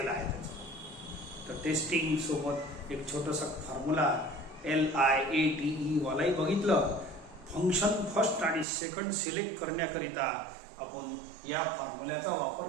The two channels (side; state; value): left; drops out; at 8.7 s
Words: आहे त्याचा. तर टेस्टिंग सोबत एक छोटासा फॉर्म्युला LIATE वालाही बघितलं. फंक्शन फर्स्ट आणि सेकंड सिलेक्ट करण्याकरिता आपण या फॉर्म्युल्याचा वापर